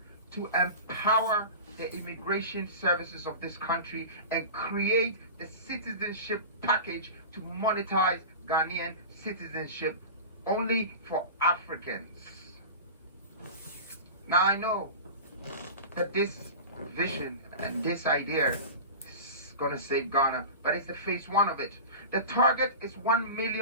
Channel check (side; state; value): both; inverted; correlation -0.31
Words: to empower the immigration services of this country and create the citizenship package to monetize Ghanaian citizenship only for Africans. Now I know that this vision and this idea is going to save Ghana, but it's the phase 1 of it. The target is 1